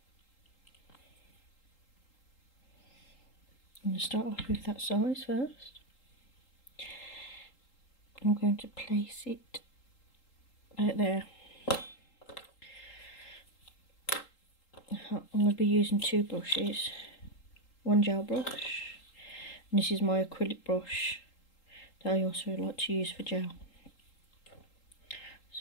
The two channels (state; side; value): late; right; 3.8 ms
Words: I'm going to start off with that size first. I'm going to place it out there. I'm going to be using two brushes. One gel brush, and this is my acrylic brush that I also like to use for gel.